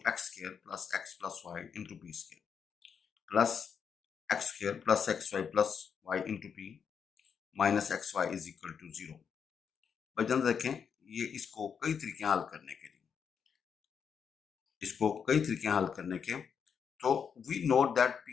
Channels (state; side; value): quieter; right; 6.9 dB